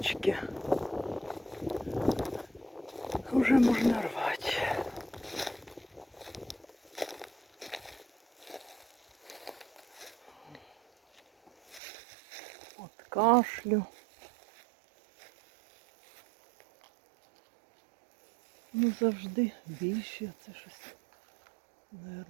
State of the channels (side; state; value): left; drops out; at 11.8 s